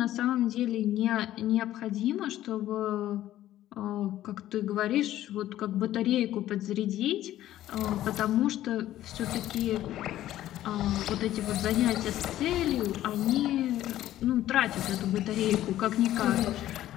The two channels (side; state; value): right; quieter; 13.5 dB